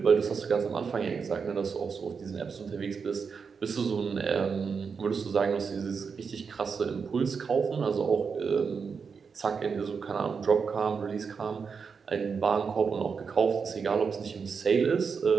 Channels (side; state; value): left; quieter; 5.7 dB